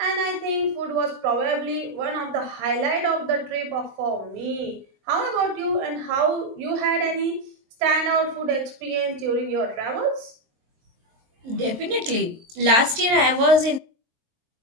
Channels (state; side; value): late; left; 23 ms